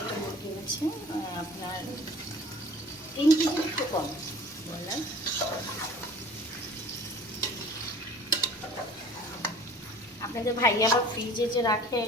মুরগি আছে, আপনার 3 কেজি একটু কম বললাম। আপনাদের ভাই আবার ফ্রিজে যে রাখে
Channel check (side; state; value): both; normal; correlation 0.46